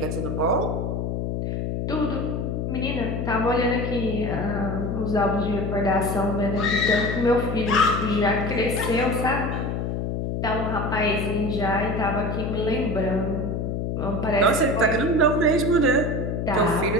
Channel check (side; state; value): left; noise; hum, 2 dB below the sound